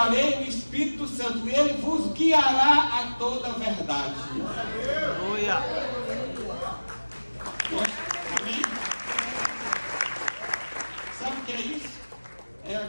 o Espírito Santo. E Ele vos guiará a toda a verdade. Aleluia. Amém? Sabe o que é isso? É a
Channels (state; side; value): inverted; both; correlation -1.00